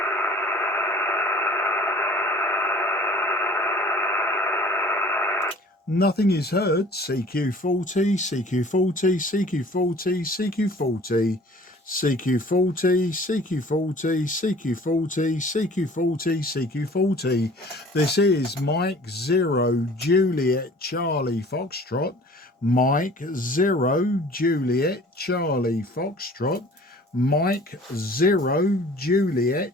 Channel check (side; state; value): both; normal; correlation 0.49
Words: Nothing is heard. CQ40, CQ40, CQ40, CQ40, CQ40, CQ40, CQ40, CQ40, CQ40. This is Mike 0 Juliet Charlie Foxtrot. Mike 0 Juliet Charlie Foxtrot. Mike 0 Juliet